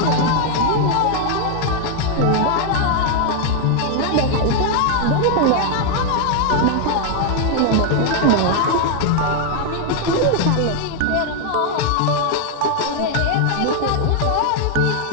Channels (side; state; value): both; different; correlation 0.00